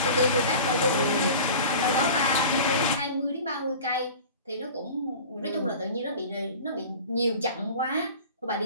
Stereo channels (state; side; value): inverted; both; correlation -0.39